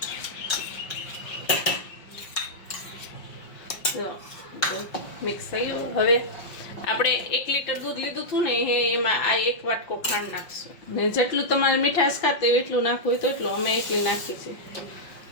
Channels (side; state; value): right; late; 5.5 ms